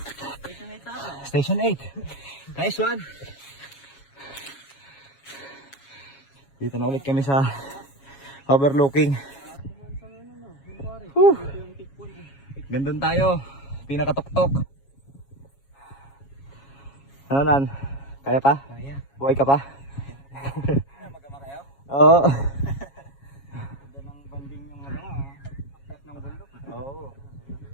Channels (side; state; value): right; late; 7.3 ms